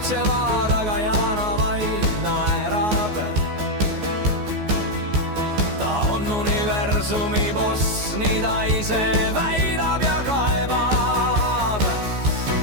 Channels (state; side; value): late; left; 14 ms